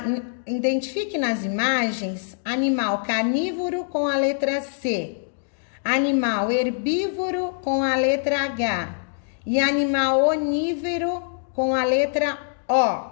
Identifique nas imagens animal carnívoro com a letra C, animal herbívoro com a letra H e animal onívoro com a letra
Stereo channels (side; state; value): right; silent; digital silence